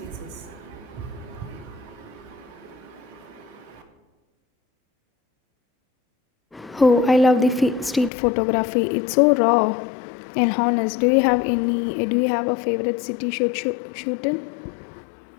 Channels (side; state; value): right; drops out; at 8.1 s